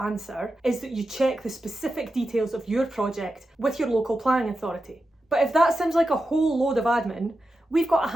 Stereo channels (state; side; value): normal; both; correlation 0.90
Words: answer is that you check the specific details of your project with your local planning authority. But if that sounds like a whole load of admin, we've got a